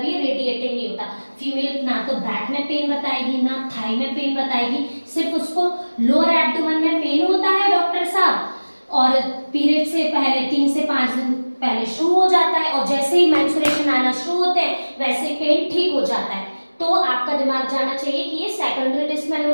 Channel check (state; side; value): inverted; both; correlation -1.00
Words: ये रेडिएटिंग नहीं होता। फीमेल ना तो बैक में पेन बताएगी ना थाई में पेन बताएगी, सिर्फ उसको लोअर एब्डोमेन में पेन होता है डॉक्टर साहब, और पीरियड से पहले 3 से 5 दिन पहले शुरू हो जाता है और जैसे ही मेंस्ट्रुएशन आना शुरू होते हैं वैसे पेन ठीक हो जाता है। तो आपका दिमाग जाना चाहिए कि ये सेकेंडरी